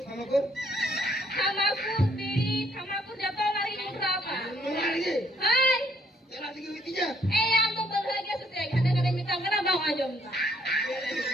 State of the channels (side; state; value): both; normal; correlation 0.67